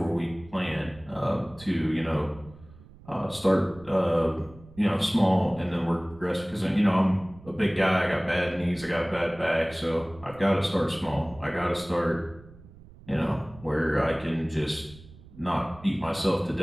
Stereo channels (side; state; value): right; noise; rumble, 21 dB below the sound